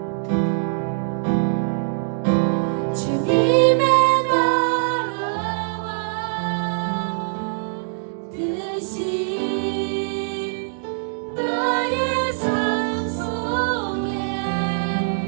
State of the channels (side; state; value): left; silent; digital silence